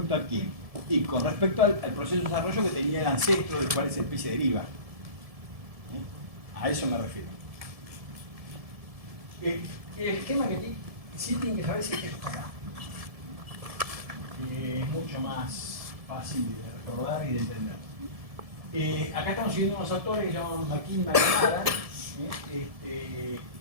a quién? Y con respecto al proceso de desarrollo que tenía el ancestro del cual esa especie deriva. A eso me refiero. El esquema que sí tienen que saber es que esto acá. Es mucho más fácil de recordar y de entender. Acá estamos siguiendo unos autores que se llaman McKim y McNamara,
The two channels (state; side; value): late; left; 1.7 ms